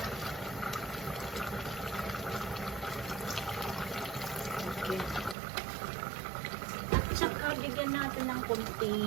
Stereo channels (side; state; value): left; drops out; at 5.4 s